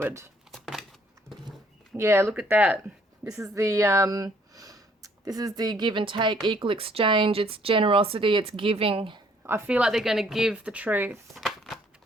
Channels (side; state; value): both; normal; correlation 0.63